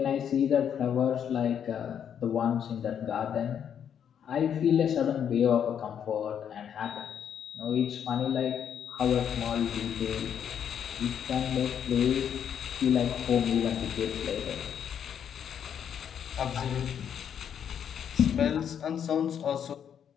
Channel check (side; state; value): right; quieter; 8.6 dB